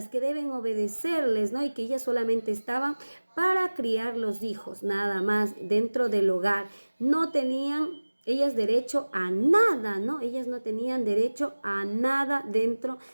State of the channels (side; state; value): both; inverted; correlation -1.00